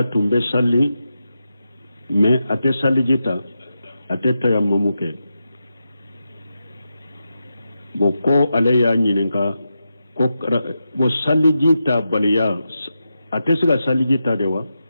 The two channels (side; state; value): both; inverted; correlation -0.88